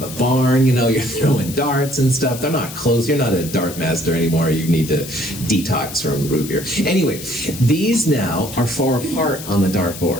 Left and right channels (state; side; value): noise; left; hiss, 12 dB below the sound